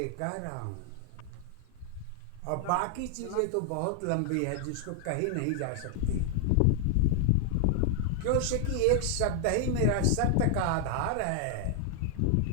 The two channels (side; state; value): both; different; correlation 0.00